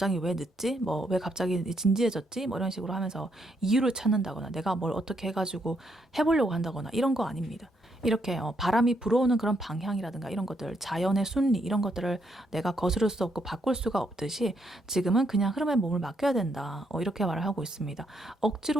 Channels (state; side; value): normal; both; correlation 0.75